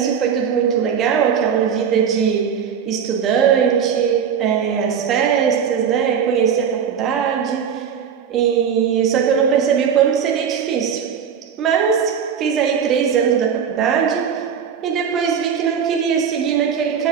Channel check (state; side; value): quieter; left; 7.5 dB